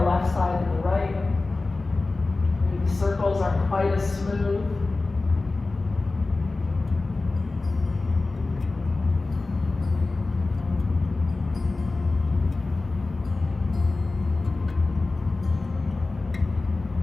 the left side than the right. Maybe the circles aren't quite as smooth.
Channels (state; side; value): quieter; right; 3.4 dB